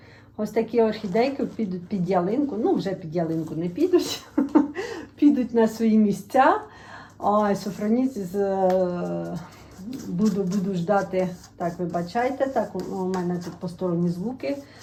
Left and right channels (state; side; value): identical; both; correlation 1.00